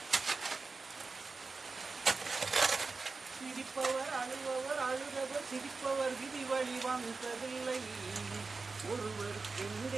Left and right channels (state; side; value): quieter; left; 4.1 dB